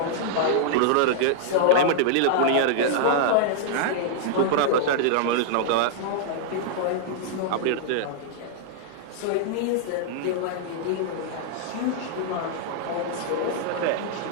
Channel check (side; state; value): both; different; correlation -0.01